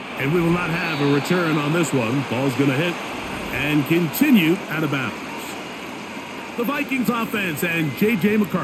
And we will not have a return on this one. Ball's going to hit and continue out of bounds. The Vikings offense and J.J.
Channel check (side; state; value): both; identical; correlation 1.00